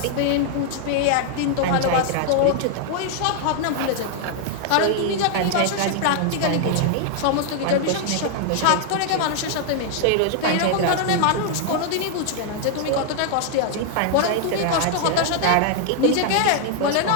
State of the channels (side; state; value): both; different; correlation 0.00